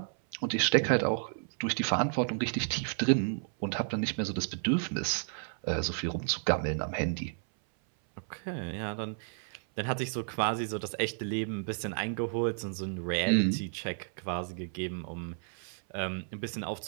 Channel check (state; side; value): silent; left; 56 dB below the other